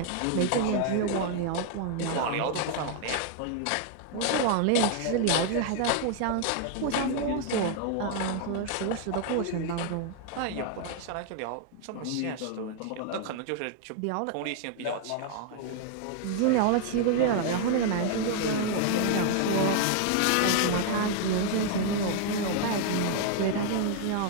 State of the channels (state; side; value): different; both; correlation 0.00